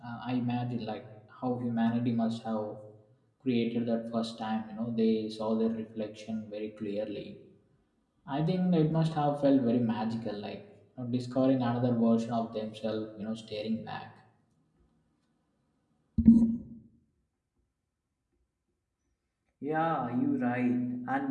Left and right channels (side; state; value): both; identical; correlation 1.00